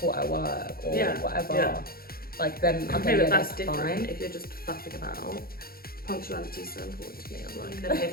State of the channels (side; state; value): right; late; 0.44 ms